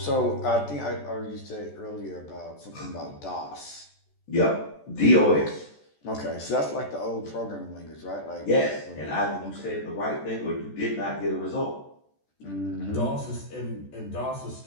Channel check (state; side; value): late; right; 14 ms